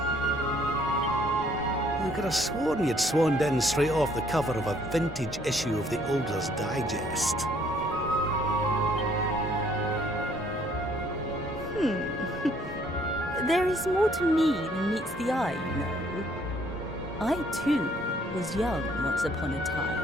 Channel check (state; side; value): normal; both; correlation 0.63